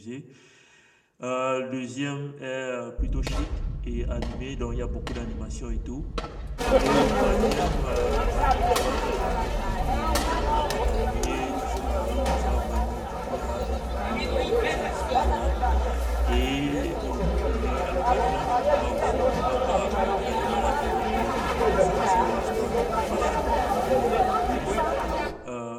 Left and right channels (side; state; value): both; identical; correlation 1.00